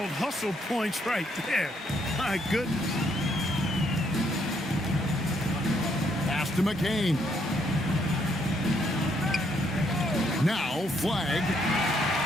hustle points right there. My goodness. Pass to McCain. Now Flag.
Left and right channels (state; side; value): normal; both; correlation 0.72